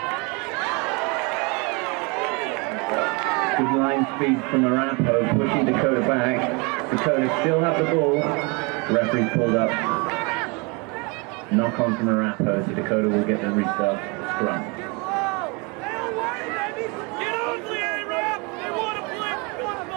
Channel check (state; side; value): quieter; left; 29.9 dB